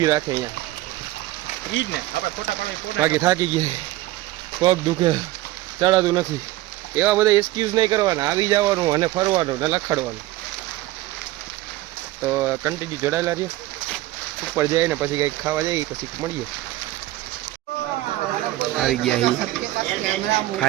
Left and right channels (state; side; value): quieter; left; 16.8 dB